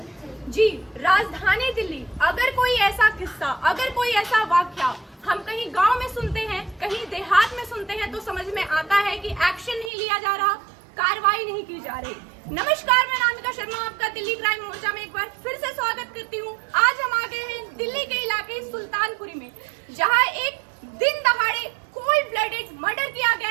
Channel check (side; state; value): left; drops out; at 9.9 s